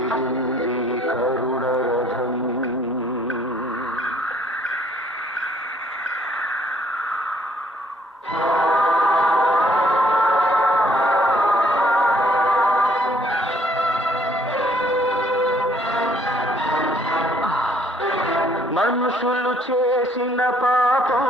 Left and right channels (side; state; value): both; normal; correlation 0.64